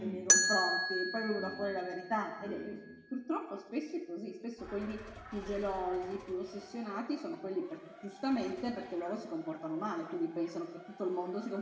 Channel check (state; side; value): identical; both; correlation 1.00